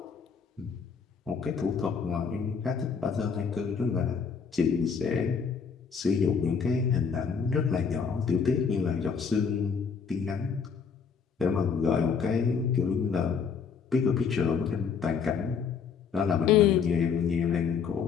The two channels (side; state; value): right; quieter; 6.1 dB